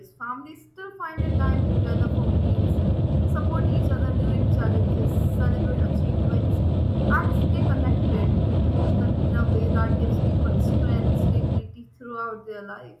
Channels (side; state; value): both; identical; correlation 1.00